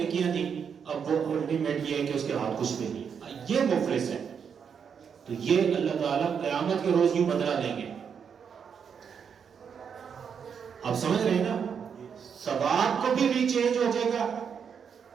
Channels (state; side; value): quieter; left; 7.0 dB